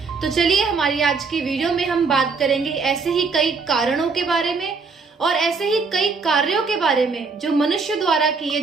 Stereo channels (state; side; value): quieter; left; 4.7 dB